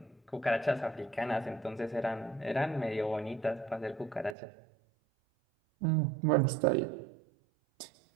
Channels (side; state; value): left; drops out; at 4.4 s